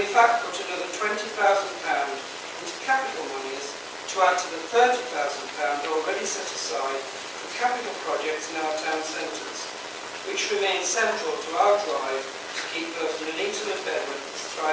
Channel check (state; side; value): identical; both; correlation 1.00